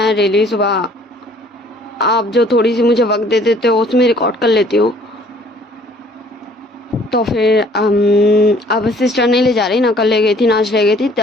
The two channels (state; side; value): normal; both; correlation 0.57